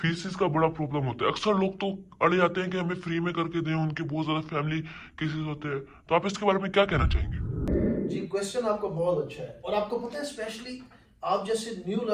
का बड़ा प्रॉब्लम होता है। अक्सर लोग तो अड़े जाते हैं कि हमें फ्री में करके दें, उनके बहुत ज़्यादा फैमिली केसेस होते हैं। तो आप इसके बारे में क्या कहना चाहेंगे? जी, क्वेश्चन आपका बहुत अच्छा है। और आपको पता है स्पेशली आप जैसे न्यू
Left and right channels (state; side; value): identical; both; correlation 1.00